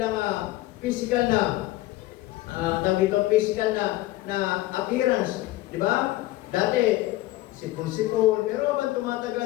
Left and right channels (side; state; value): right; quieter; 17.2 dB